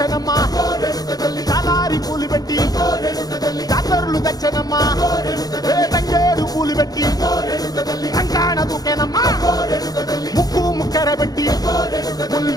చాలారి పూలు పెట్టి జాతరులు తెచ్చనమ్మా తంగేడు పూలు పెట్టి కంకాణ దూకేనమ్మా ముక్కు ముక్కెర పెట్టి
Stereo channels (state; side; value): late; right; 0.18 ms